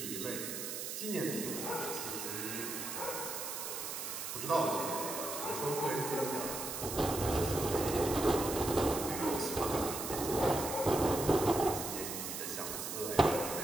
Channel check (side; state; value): right; noise; hiss, 5 dB below the sound